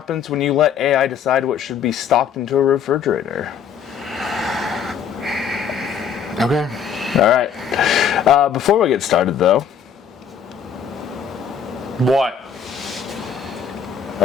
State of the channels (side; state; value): right; quieter; 7.4 dB